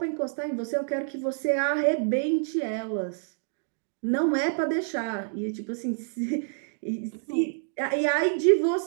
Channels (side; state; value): left; silent; digital silence